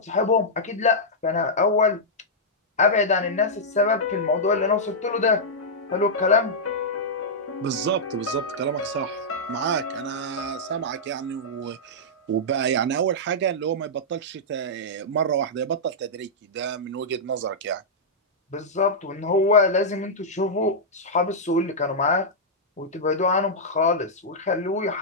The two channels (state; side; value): normal; both; correlation -0.09